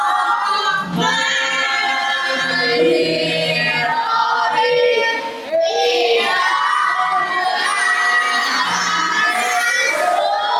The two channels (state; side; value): identical; both; correlation 1.00